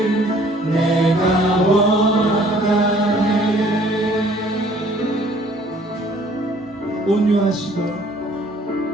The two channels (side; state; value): both; normal; correlation 0.57